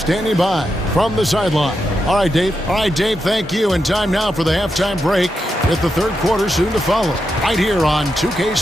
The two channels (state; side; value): normal; both; correlation 0.86